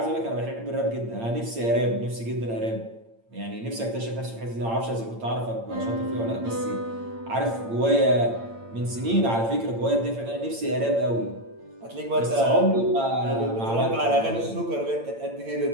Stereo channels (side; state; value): left; late; 8.8 ms